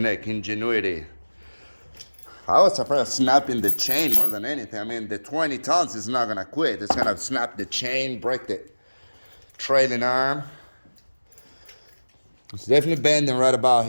ingenuity. I was afraid of snapping the chain more than anything. I mean, the 20 tons is not gonna quit. It's gonna snap the chain, break the trailing arm. It's definitely bending right about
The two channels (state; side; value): inverted; both; correlation -1.00